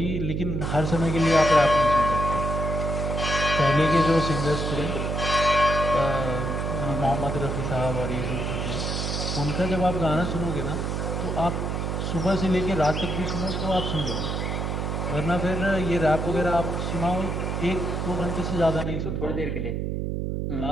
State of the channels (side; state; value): right; noise; hum, 1 dB below the sound